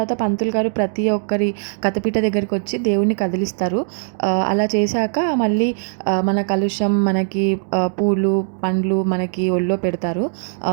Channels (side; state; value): left; silent; digital silence